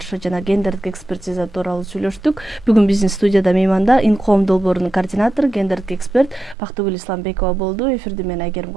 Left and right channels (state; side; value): drops out; left; at 6.6 s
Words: жана гендердик экспертиза тууралуу сүйлөштүк. Бүгүн биздин студияда мейманда Инкоом долбоорунун координатору, гендердик эксперт Бактыгүл Исламбекова болду. Эфирди мен Айгерим